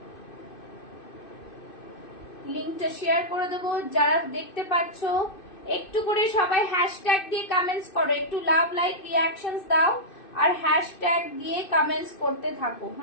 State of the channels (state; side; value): late; right; 2.6 ms